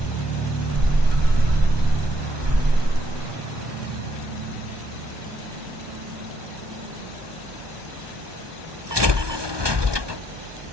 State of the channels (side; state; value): left; late; 1.2 ms